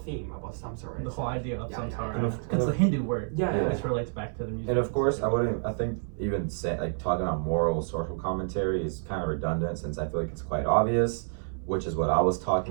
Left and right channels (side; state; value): left; silent; 59 dB below the other